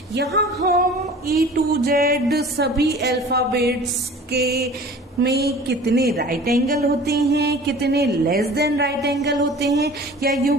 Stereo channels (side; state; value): both; normal; correlation 0.43